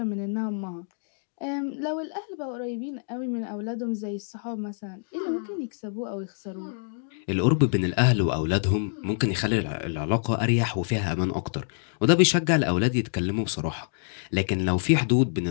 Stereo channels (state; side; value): silent; right; digital silence